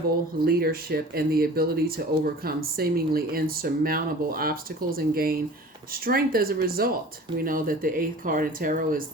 leadership and the ability to overcome seemingly insurmountable obstacles and gain strength as a result. We know that the 8th card in tarot is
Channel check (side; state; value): both; normal; correlation 0.43